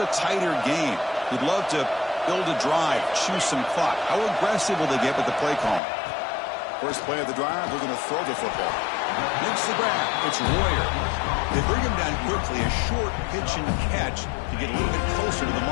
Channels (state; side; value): drops out; right; at 5.8 s